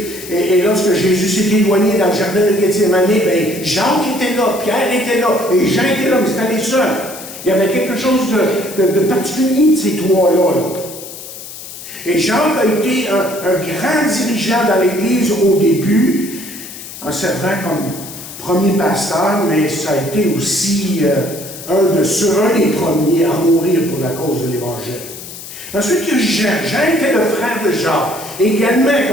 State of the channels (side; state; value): left; noise; hiss, 13 dB below the sound